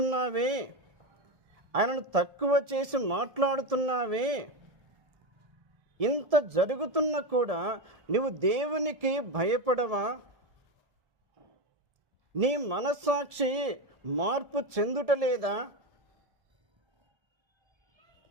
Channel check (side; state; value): left; late; 1.7 ms